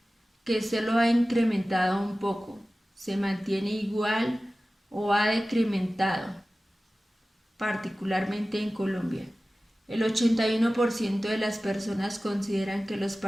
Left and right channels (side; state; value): both; normal; correlation 0.96